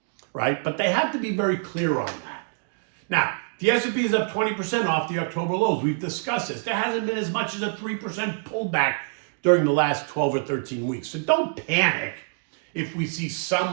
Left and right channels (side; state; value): left; silent; 61 dB below the other